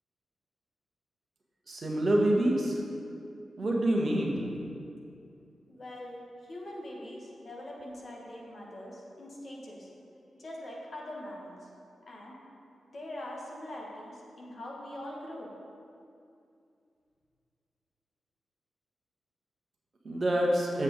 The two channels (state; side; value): normal; both; correlation 0.93